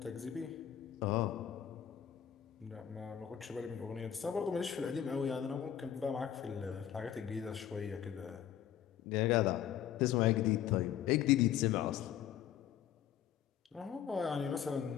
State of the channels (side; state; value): right; quieter; 10.1 dB